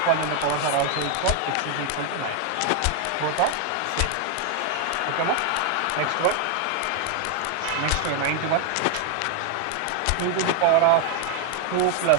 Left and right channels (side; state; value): both; different; correlation 0.01